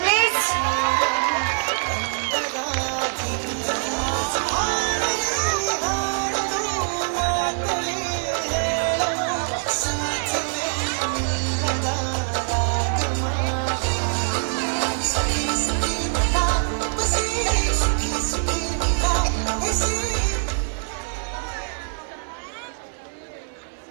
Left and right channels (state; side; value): silent; left; 59 dB below the other